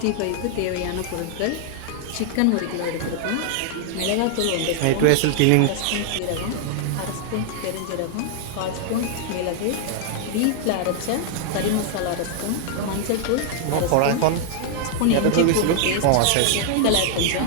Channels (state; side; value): different; both; correlation -0.01